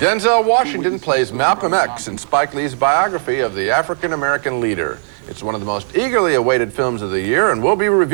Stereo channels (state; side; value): silent; left; 62 dB below the other